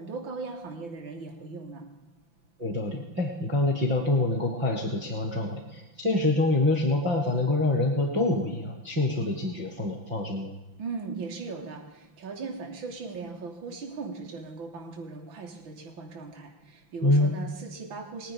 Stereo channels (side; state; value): left; late; 5.9 ms